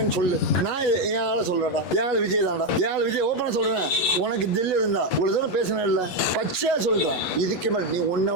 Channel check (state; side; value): late; right; 11 ms